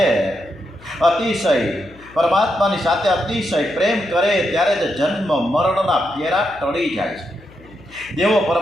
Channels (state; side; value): noise; left; hum, 23 dB below the sound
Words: અતિશય પ્રેમ કરે ત્યારે જ જન્મ મરણના ફેરા ટળી જાય છે. દેવો